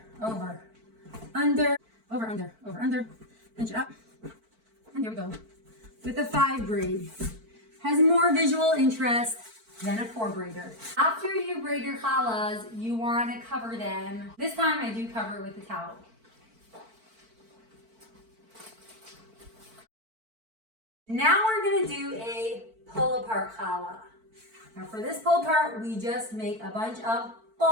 over, under, over, under, over, under. Pinch it up. And there we go. With the 5 braid. Has more visual interest than a 4 braider. After you braid your challahs, you want to cover them. This time I do cover it with a towel. Now we're going to do a pull apart challah. Now for this pull apart, we just make a bunch of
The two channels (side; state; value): left; late; 4.5 ms